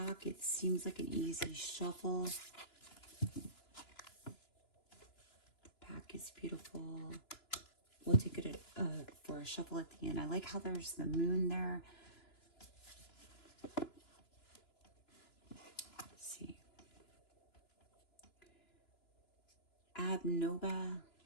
It seems like an easy shuffle. deck is beautiful. We'll take it for a shuffle at the end. I like how there's the moon there. Let's see. Abnoba.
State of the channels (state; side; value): late; right; 2.9 ms